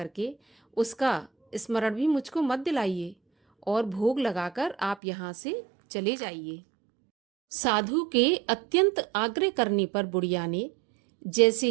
उसका स्मरण भी मुझको मत दिलाइए और भोग लगाकर आप यहाँ से चले जाइए। साधु के अत्यंत आग्रह करने पर बुढ़िया ने जैसे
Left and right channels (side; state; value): left; drops out; at 5.0 s